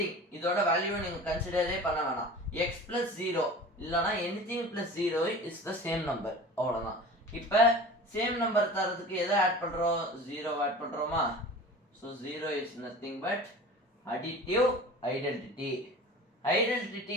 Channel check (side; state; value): both; normal; correlation 0.38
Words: இதோட வேல்யூவை நீங்கள் கன்சிடரே பண்ண வேணாம். எக்ஸ் ப்ளஸ் 0 இல்லைனா anything plus 0 is the same number, அவ்வளோதான். இப்போ சேம் நம்பர் தரதுக்கு எதை ஆட் பண்ணுறோம்? 0 ஆட் பண்ணுறோமா? So 0 is nothing but additive identity.